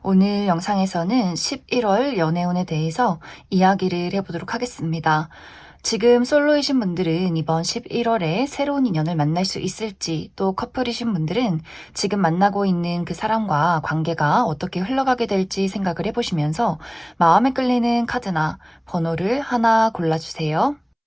오늘 영상에서는 11월 연애운에 대해서 이야기를 해보도록 하겠습니다. 지금 솔로이신 분들은 이번 11월에 새로운 인연을 만날 수 있을지, 또 커플이신 분들은 지금 만나고 있는 그 사람과 관계가 어떻게 흘러가게 될지 생각을 해보시면서 마음에 끌리는 카드나 번호를 하나 골라주세요.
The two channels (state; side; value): identical; both; correlation 1.00